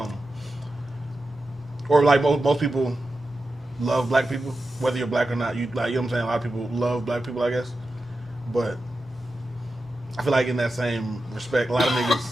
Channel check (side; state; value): both; normal; correlation 0.91